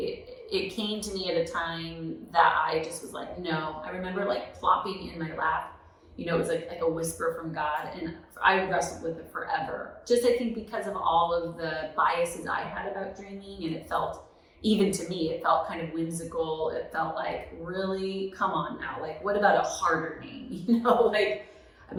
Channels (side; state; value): both; identical; correlation 1.00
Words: came to me at a time that I just was like, no. I remember plopping in my lap. It was like a whisper from God, and I wrestled with it forever. Just I think because of all of the biases I had about dreaming, and it felt, even to me, it felt kind of whimsical. It felt like, really, come on now, what about a harder name? I